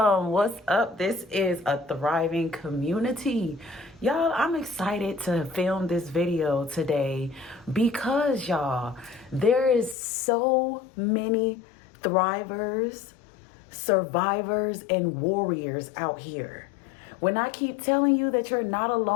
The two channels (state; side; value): drops out; right; at 10.0 s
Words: What's up? This is a thriving community. Y'all, I'm excited to film this video today because, y'all, there is so many thrivers, survivors, and warriors out here. When I keep telling you that you're not